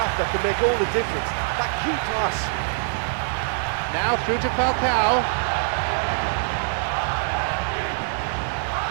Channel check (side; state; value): left; silent; digital silence